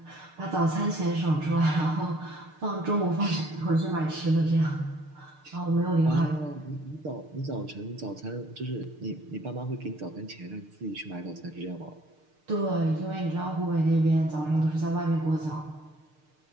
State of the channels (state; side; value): late; left; 6.6 ms